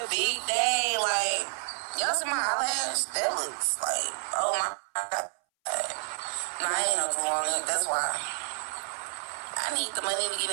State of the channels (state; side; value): silent; left; 58 dB below the other